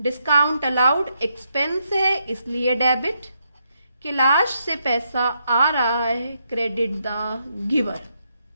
अलाउड, एक्सपेंस है इसलिए डेबिट। कैलाश से पैसा आ रहा है, क्रेडिट द गिवर।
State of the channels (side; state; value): both; inverted; correlation -0.79